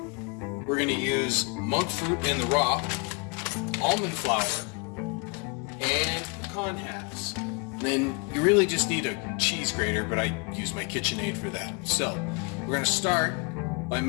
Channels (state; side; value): quieter; right; 32.5 dB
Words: we're going to use monk fruit in the raw, almond flour, and pecan halves. Then you really just need a cheese grater, but I use my KitchenAid for that. So we're going to start by